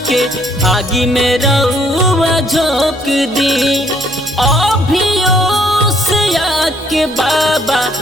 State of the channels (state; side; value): noise; left; hum, 25 dB below the sound